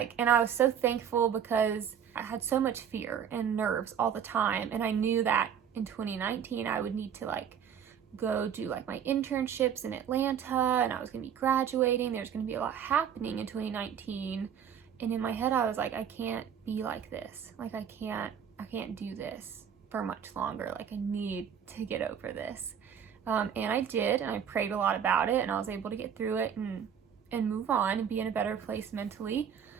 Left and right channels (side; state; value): left; quieter; 8.3 dB